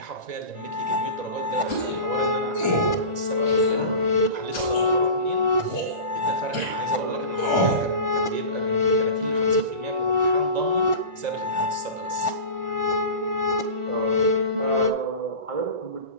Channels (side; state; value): left; late; 1.5 ms